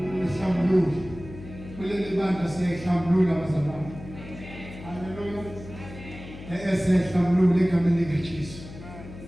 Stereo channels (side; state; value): left; noise; hum, 14 dB below the sound